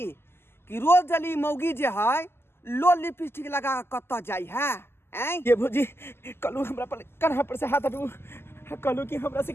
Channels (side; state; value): right; late; 0.12 ms